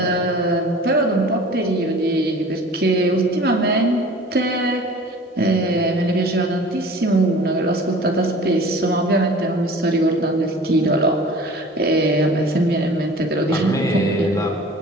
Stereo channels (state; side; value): normal; both; correlation 0.44